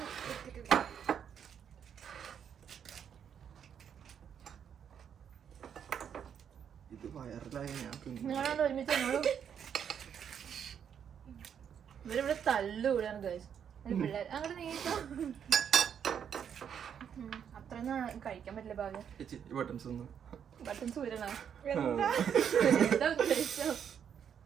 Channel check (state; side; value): quieter; left; 8.2 dB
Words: എടുത്തിട്ടില്ല. ഇത് വയറിലായി ഞാൻ നിങ്ങളോട് ഒരുമിച്ച് ഇവരിവിടെ തല്ലുകൂടാണ് ഗൈസ് പിള്ളേർ. അങ്ങോട്ട് നീക്കാം. അത്രയൊന്നും കഴിക്കാൻ പറ്റില്ല. ഭാഗ്യം ബട്ടൺസ് ഊരണോ? എന്താ ഉദ്ദേശിച്ചോ?